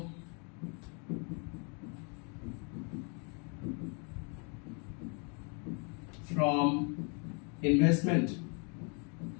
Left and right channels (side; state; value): right; quieter; 36.2 dB